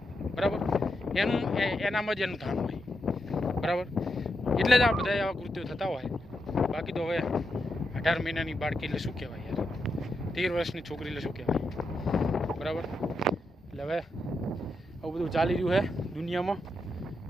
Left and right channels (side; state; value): both; normal; correlation 0.84